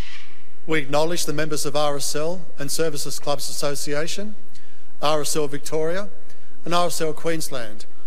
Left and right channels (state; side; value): identical; both; correlation 1.00